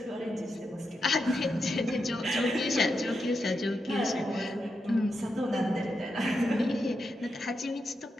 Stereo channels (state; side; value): normal; both; correlation 0.86